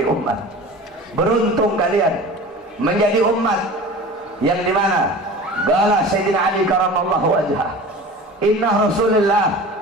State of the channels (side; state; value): both; normal; correlation 0.38